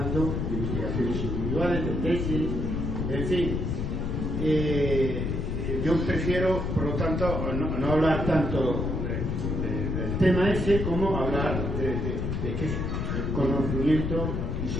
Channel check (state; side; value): noise; left; rumble, 1 dB below the sound